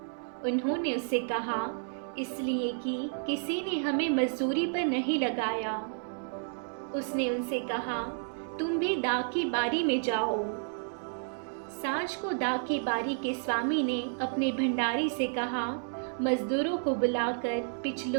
उन्होंने उससे कहा, इसलिए कि किसी ने हमें मजदूरी पर नहीं लगाया। उसने उनसे कहा, तुम भी दाख की बारी में जाओ। सांझ को दाख की बारी के स्वामी ने अपने भंडारी से कहा, मजदूरों को बुलाकर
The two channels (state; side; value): silent; left; 57 dB below the other